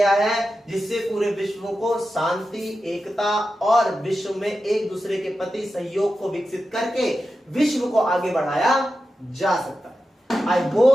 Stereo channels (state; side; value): normal; both; correlation 0.91